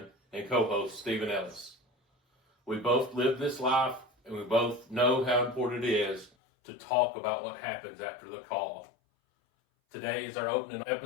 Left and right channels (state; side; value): drops out; right; at 6.3 s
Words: and co-host, Stephen Ellis. We both live this life, and we both know how important it is to talk about what happens after the call. Today is our opening